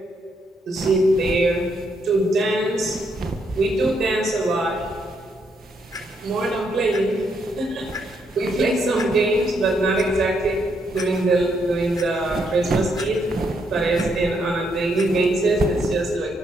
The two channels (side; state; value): both; normal; correlation 0.76